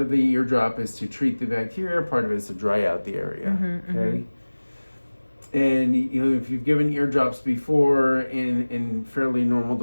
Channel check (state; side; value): inverted; both; correlation -1.00